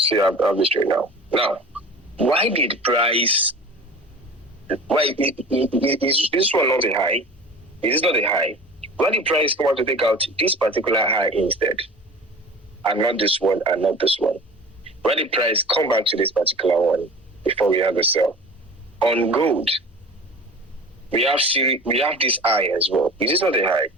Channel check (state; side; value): normal; both; correlation 0.39